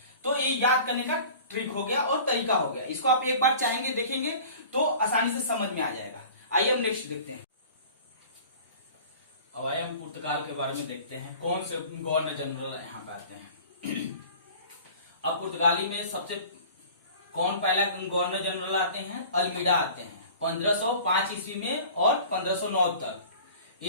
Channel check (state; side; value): inverted; both; correlation -0.43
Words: तो ये याद करने का ट्रिक हो गया और तरीका हो गया, इसको आप एक बार चाहेंगे देखेंगे तो आसानी से समझ में आ जाएगा। आइए हम नेक्स्ट देखते हैं। अब आइए हम पुर्तगाल के बारे में देखते हैं, कौन से गवर्नर जनरल यहाँ पे आते हैं। अब पुर्तगाली में सबसे कौन पहला गवर्नर जनरल आते हैं, अल्मीडा आते हैं 1505 ईस्वी में, और 1509 तक